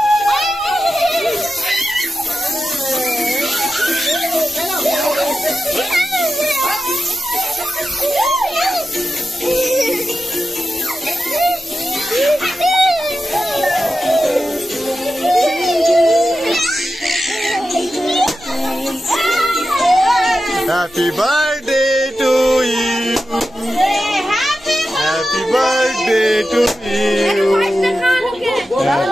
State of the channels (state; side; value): noise; left; rumble, 28 dB below the sound